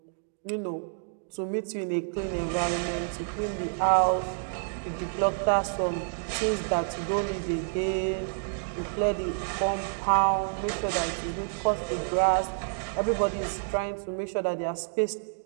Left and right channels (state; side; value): silent; left; digital silence